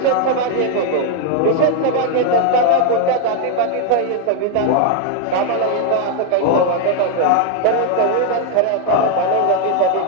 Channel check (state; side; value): different; both; correlation 0.00